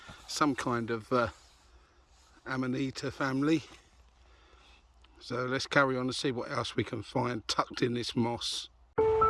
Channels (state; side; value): identical; both; correlation 1.00